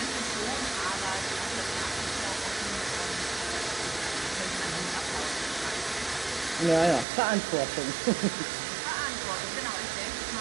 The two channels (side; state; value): left; drops out; at 7.1 s